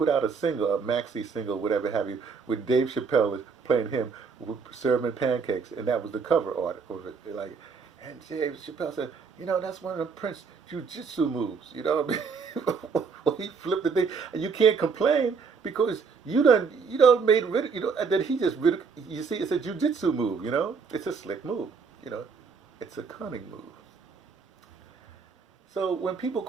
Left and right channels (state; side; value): quieter; left; 5.4 dB